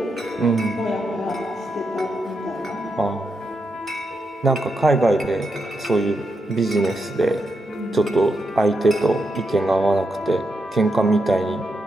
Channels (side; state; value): both; normal; correlation 0.84